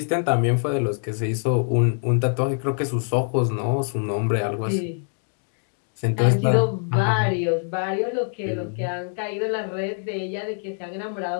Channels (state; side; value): silent; right; 61 dB below the other